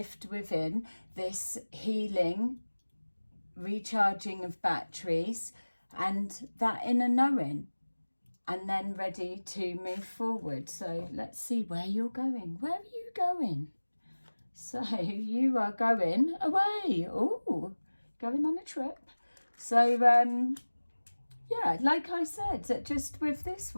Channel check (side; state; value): both; inverted; correlation -1.00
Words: within, this healing, recharging of batteries, and that inner knowing, and then ready to move forward. So let's see where you're going. Where are you going? So you are going away. Oh, going on a trip. So yeah, like I said, just with this